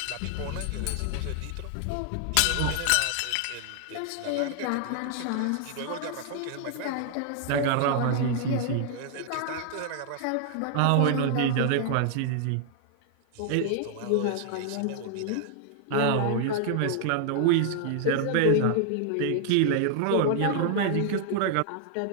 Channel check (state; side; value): different; both; correlation 0.00